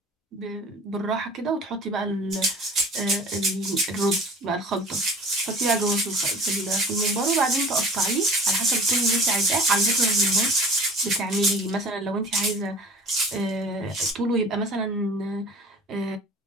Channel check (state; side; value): normal; both; correlation 0.44